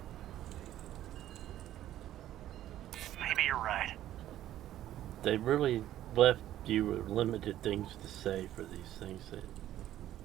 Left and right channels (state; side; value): quieter; left; 12.8 dB